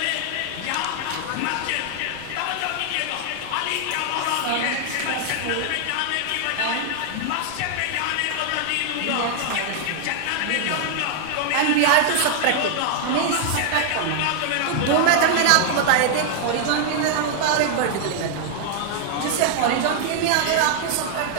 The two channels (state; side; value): different; both; correlation 0.00